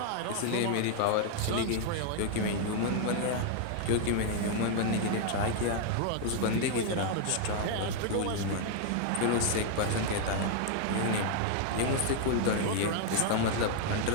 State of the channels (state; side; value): different; both; correlation 0.00